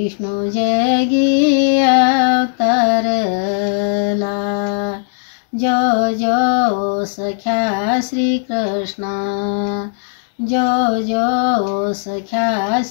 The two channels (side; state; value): right; silent; digital silence